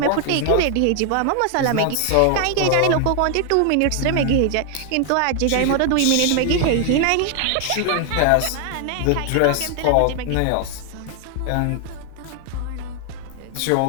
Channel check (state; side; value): different; both; correlation 0.00